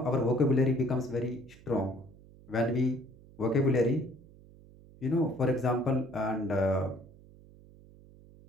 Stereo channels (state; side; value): noise; right; hum, 23 dB below the sound